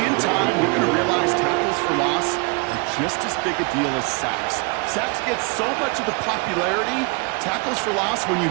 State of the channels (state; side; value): quieter; left; 30.9 dB